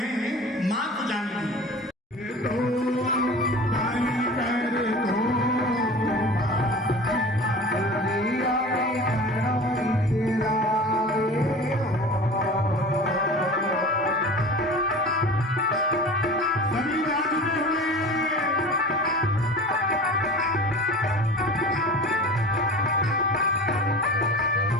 मां को जानती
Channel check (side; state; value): both; normal; correlation 0.37